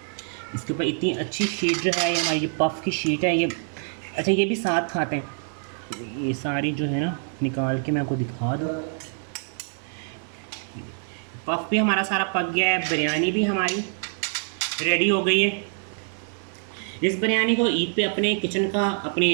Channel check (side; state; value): left; silent; 55 dB below the other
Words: इसके ऊपर इतनी अच्छी शीट जो है, ये हमारी जो पफ़ की शीट है, ये अच्छा ये भी साथ खाते हैं। ये सारी जो है ना निकाल के मैं आपको दिखा दूँ। पफ़ भी हमारा सारा पक गया है, बिरयानी भी हमारी रेडी हो गई है। इस बिरयानी को ईद पे अपने किचन का,